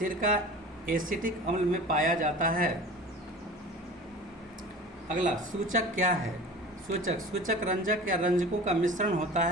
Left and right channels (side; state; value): both; normal; correlation 0.38